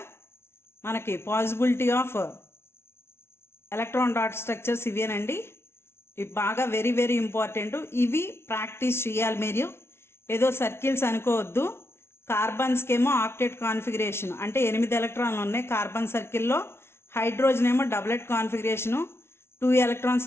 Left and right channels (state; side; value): late; right; 0.12 ms